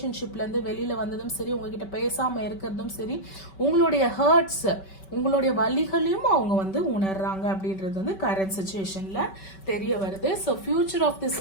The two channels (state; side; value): late; right; 5.2 ms